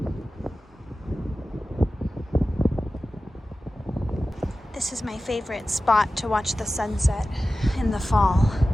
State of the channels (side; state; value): both; normal; correlation 0.95